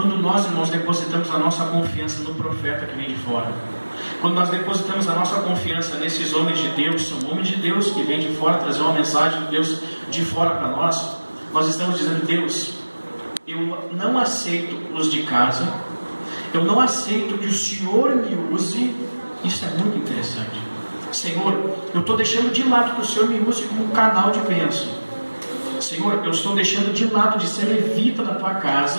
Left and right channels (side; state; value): both; inverted; correlation -1.00